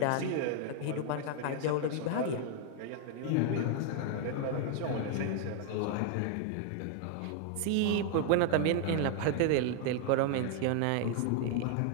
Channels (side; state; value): both; different; correlation 0.00